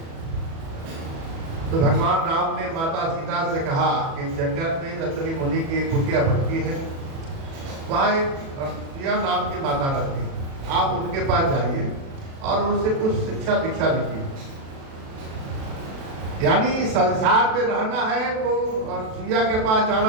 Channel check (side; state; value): left; late; 37 ms